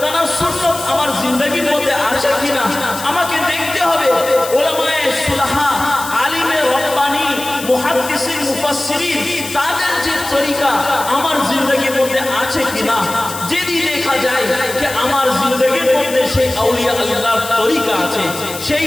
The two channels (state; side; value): noise; left; hiss, 10 dB below the sound